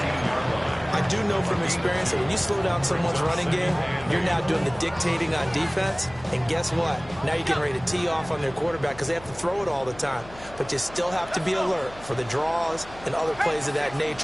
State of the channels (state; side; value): noise; left; hum, 19 dB below the sound